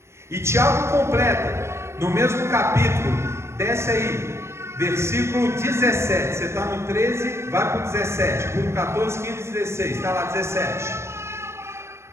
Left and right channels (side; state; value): left; late; 0.13 ms